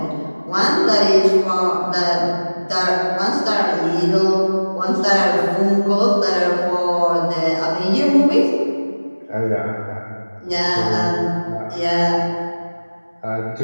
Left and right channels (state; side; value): inverted; both; correlation -1.00